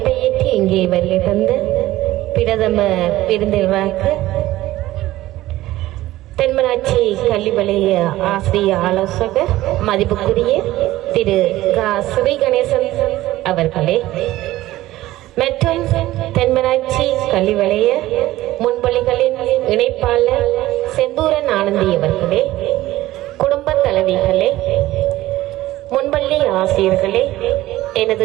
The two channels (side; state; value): left; quieter; 16.1 dB